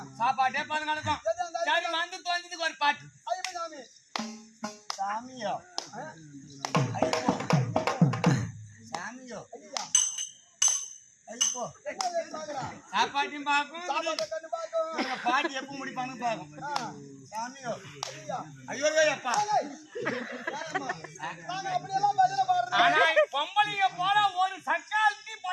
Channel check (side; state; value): both; identical; correlation 1.00